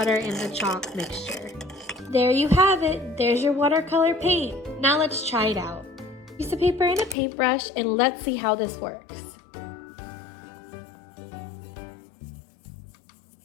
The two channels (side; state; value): right; drops out; at 7.2 s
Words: in the chalk mixture. There you have it. There's your watercolor paint. Now let's try it out. Piece of paper and a paintbrush and let's see how this works.